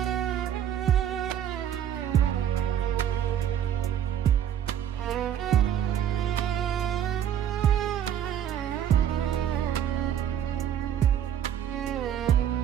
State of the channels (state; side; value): quieter; left; 9.7 dB